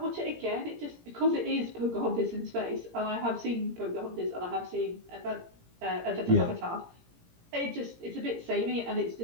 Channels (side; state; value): left; late; 17 ms